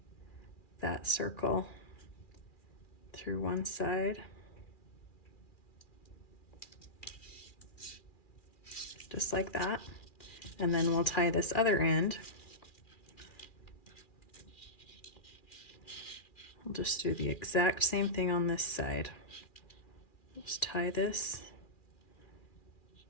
that circle through one side. Just like that. And then we'll tie this other end. We'll just do the exact same thing on this side. Just tie this.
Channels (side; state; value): right; late; 2.4 ms